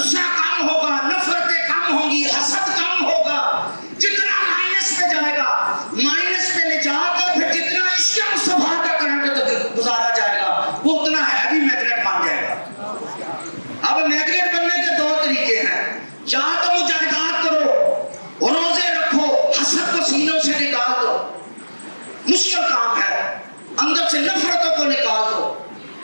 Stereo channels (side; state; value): both; inverted; correlation -1.00